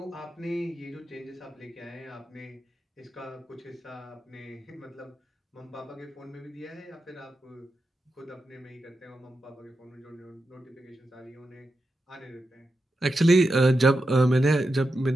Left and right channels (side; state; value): both; normal; correlation 0.88